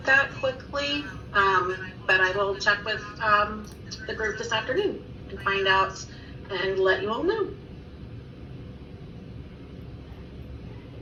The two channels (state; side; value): identical; both; correlation 1.00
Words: that quickly, but I will check with the group this afternoon and find out and let you all know.